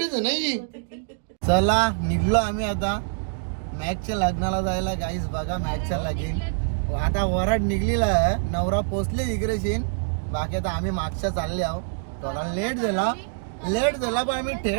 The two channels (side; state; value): left; silent; digital silence